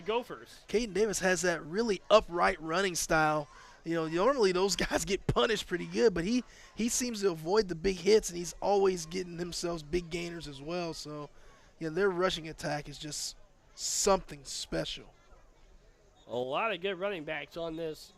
Gophers. Caden Davis has that really upright running style. You know, normally those guys get punished pretty good, but he seems to avoid the big hits, and he's always getting himself big gainers as well. So, you know, their rushing attack is just something special. A lot of good running backs on this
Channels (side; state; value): both; identical; correlation 1.00